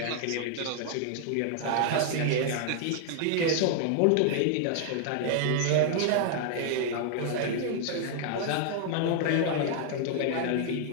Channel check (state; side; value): different; both; correlation 0.00